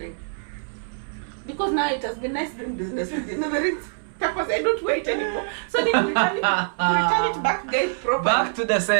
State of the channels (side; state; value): left; silent; 61 dB below the other